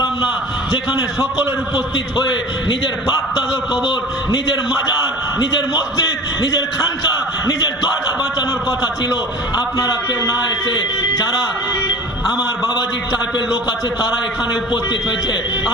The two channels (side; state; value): both; normal; correlation 0.39